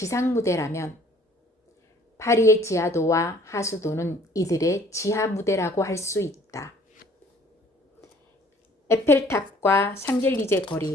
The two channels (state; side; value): normal; both; correlation 0.56